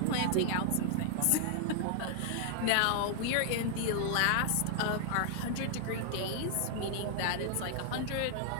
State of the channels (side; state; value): both; different; correlation -0.01